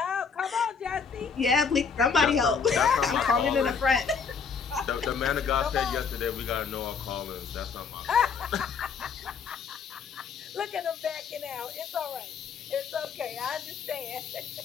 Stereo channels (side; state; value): right; quieter; 5.9 dB